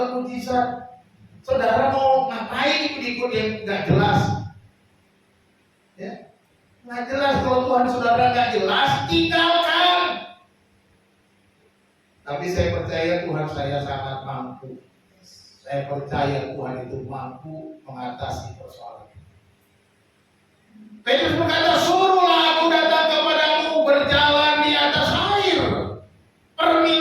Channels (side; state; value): both; identical; correlation 1.00